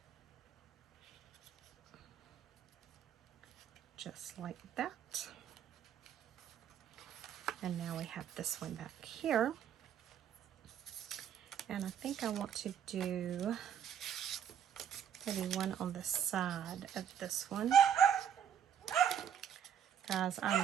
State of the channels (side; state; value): left; quieter; 8.9 dB